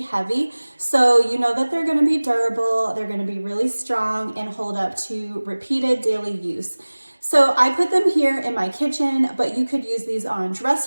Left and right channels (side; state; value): both; inverted; correlation -1.00